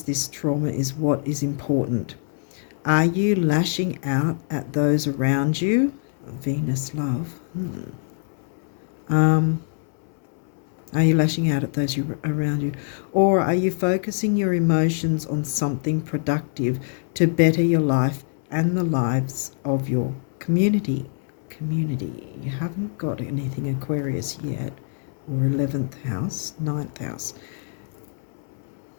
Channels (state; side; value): silent; right; 62 dB below the other